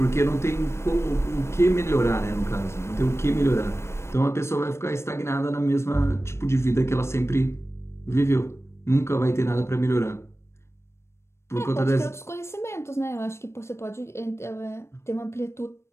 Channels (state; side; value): late; right; 0.13 ms